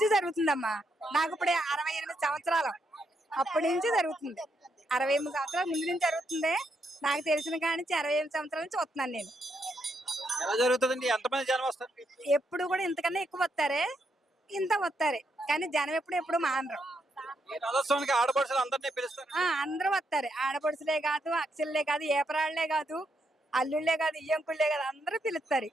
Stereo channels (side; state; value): both; normal; correlation 0.79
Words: జరుగుతుందమ్మా. నాకు ఇప్పుడు 68 సంవత్సరాలు అప్పటి నుంచి జరుగుతుంది. 68 సంవత్సరాల ముందు నుంచి జరుగుతుంది. నాకు తెలిసిన కాడి నుంచి 68 సంవత్సరాల నుంచి వస్తున్నాను నేను. ఎలా జరుగుతుందండి? ఎంతమంది జనం వస్తారు? ఎప్పుడు కూడా ఇంతకన్నా ఎక్కువ వస్తారే, ఇంత వస్తారే, కానీ జనం ఎప్పుడు మానరు. ఈ రథోత్సవానికి ఆడపడుచులు అందరినీ పిలుస్తారు. అందరూ వస్తారు. ఆడపడుచులే కాదు, అక్షలే కాదు, ఏపరాళ్లే కాదు, అల్లుళ్ళే కాదు, ఇయ్యంకుళ్ళే కాదు, అందరూ పిలుస్తారు.